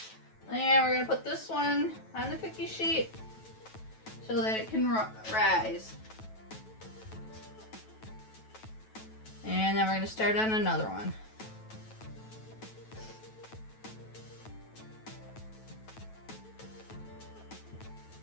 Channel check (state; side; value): late; right; 9.2 ms